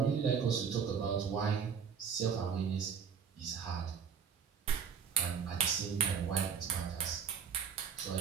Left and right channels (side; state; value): left; quieter; 6.9 dB